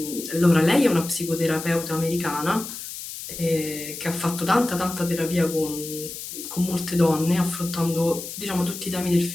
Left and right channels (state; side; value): noise; left; hiss, 9 dB below the sound